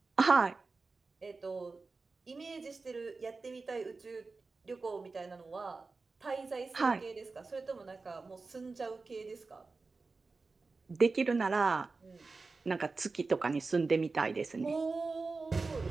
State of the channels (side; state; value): left; quieter; 4.0 dB